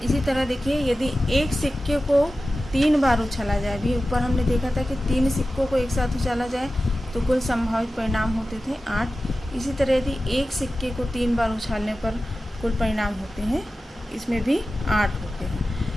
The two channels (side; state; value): both; normal; correlation 0.94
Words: इसी तरह देखिए, यदि एक सिक्के को 3 बार उछाला जाए, भी ऊपर हमने देखा था कि 3 सिक्कों को एक साथ उछाला जाए तो कुल संभावित परिणाम होते थे 8। इसी तरह यदि एक सिक्के को 3 बार उछालने पर कुल परिणाम होते हैं, इसमें भी 8 होते हैं।